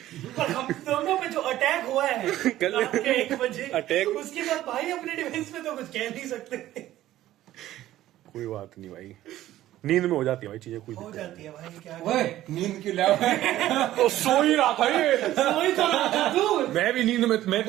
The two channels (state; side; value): quieter; left; 14.1 dB